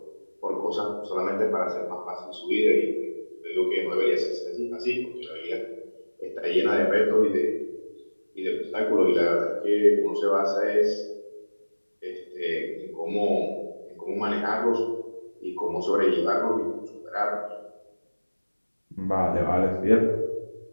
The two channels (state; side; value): inverted; both; correlation -1.00